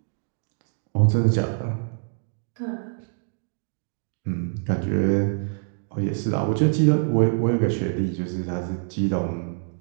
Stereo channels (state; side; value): silent; left; 62 dB below the other